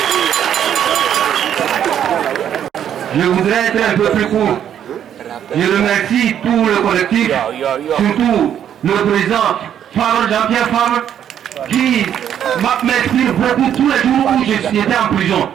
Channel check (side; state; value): left; quieter; 9.7 dB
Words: Je voudrais être un peu plus court. Je remercie tout le collectif, surtout le président Jean-Pierre Favre, qui m'inspire beaucoup tous les jours où j'étais en prison.